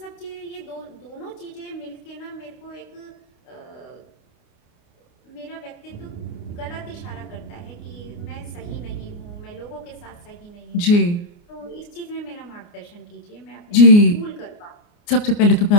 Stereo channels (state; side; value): late; right; 29 ms